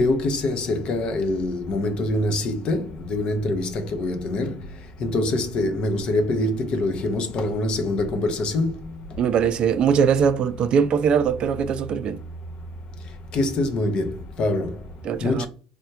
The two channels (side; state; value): both; normal; correlation 0.63